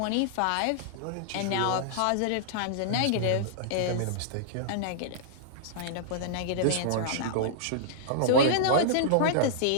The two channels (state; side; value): different; both; correlation -0.02